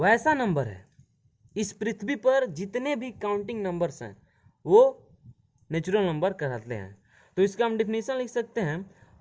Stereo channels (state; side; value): identical; both; correlation 1.00